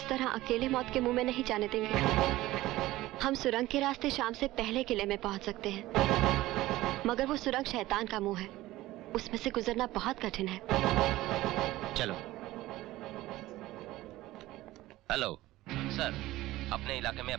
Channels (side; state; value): left; quieter; 17.0 dB